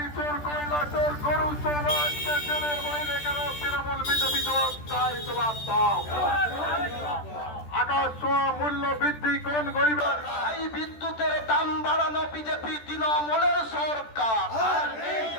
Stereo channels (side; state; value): right; late; 13 ms